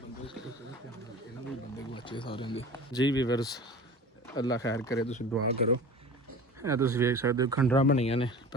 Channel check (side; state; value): both; normal; correlation 0.37